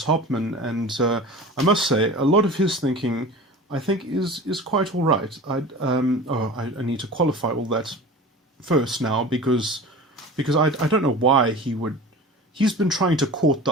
Hopman, and I must say, a lot of his thinking, I think, is quite all right. I need to qualify all that first now, because I don't know why he would... He's been trying to court the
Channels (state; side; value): normal; both; correlation 0.36